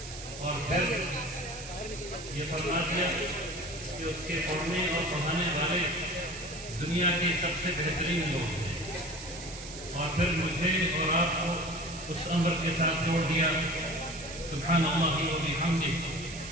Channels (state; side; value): noise; right; hiss, 12 dB below the sound